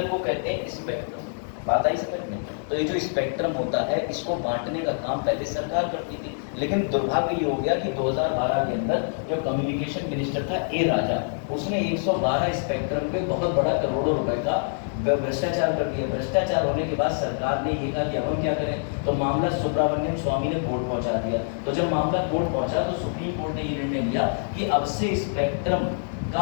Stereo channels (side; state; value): right; silent; 61 dB below the other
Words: को कहते हैं स्पेक्ट्रम। बात आई समझ में? तो ये जो स्पेक्ट्रम होता है, इसको बांटने का काम पहले सरकार करती थी, लेकिन दुर्भाग्य ये हो गया कि 2012 के अंदर जो कम्युनिकेशन मिनिस्टर था ए राजा, उसने 112 स्पेक्ट्रम पे बहुत बड़ा करोड़ों रुपए का भ्रष्टाचार कर दिया। भ्रष्टाचार होने के बाद सरकार ने ये कहा कि अब हम क्या करें, तो मामला सुब्रमण्यम स्वामी ने कोर्ट पहुंचा दिया। तो जब मामला कोर्ट पहुंचा तो सुप्रीम कोर्ट ने ये निर्णय लिया कि अब से स्पेक्ट्रम